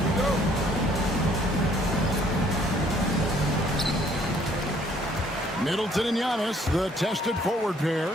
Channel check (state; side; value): normal; both; correlation 0.62